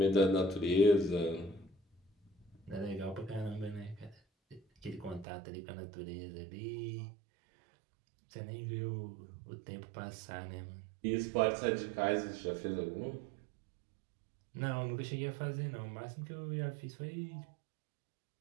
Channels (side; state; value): left; drops out; at 5.2 s